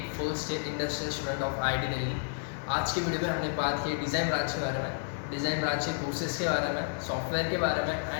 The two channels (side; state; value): right; silent; digital silence